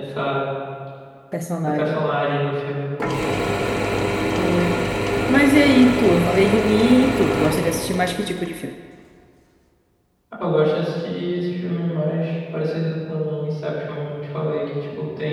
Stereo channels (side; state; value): both; identical; correlation 1.00